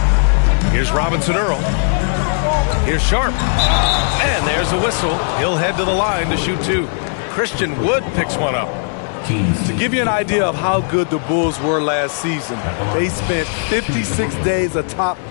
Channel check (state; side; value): silent; right; digital silence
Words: Here's Robinson Earl. Here's Sharp. And there's a whistle. He'll head to the line to shoot two. Christian Wood picks one up. To give you an idea of how good the Bulls were last season, they spent 56 days atop